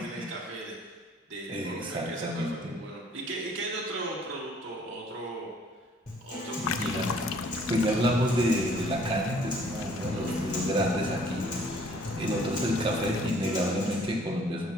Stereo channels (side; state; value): both; normal; correlation 0.59